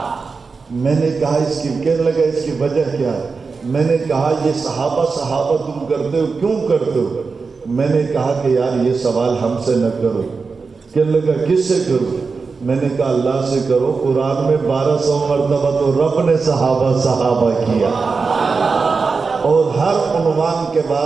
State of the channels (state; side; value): quieter; left; 4.7 dB